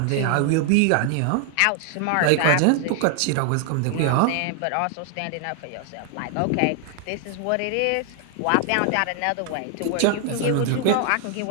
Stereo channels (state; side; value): different; both; correlation 0.00